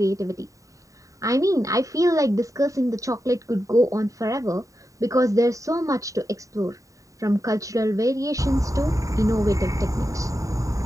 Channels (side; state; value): left; late; 0.16 ms